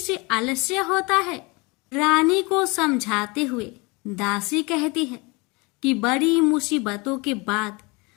आलस्य होता है। रानी को समझाते हुए दासी कहती है कि बड़ी मुसीबतों के बाद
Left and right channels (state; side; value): quieter; right; 26.8 dB